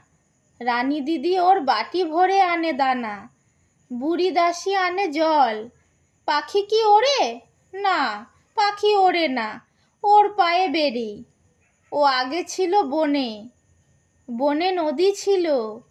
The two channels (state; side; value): identical; both; correlation 1.00